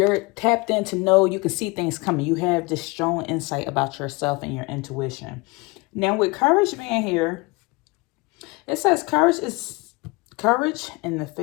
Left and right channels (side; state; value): right; quieter; 25.9 dB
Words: tapped in to know you can see things coming. You have this strong insight about yourself and your intuition. Now, with courage being here, it says courage is courage in the